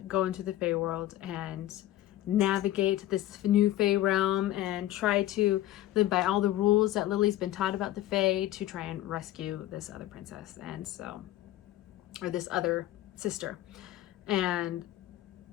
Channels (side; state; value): right; quieter; 14.3 dB